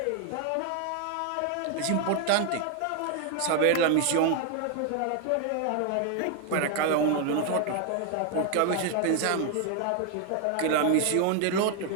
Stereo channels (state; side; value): different; both; correlation 0.00